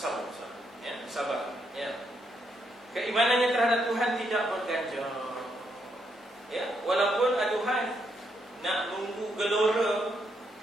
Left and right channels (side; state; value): both; normal; correlation 0.77